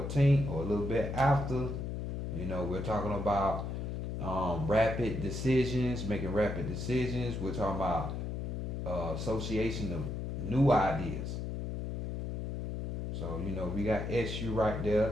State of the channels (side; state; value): left; noise; hum, 3 dB below the sound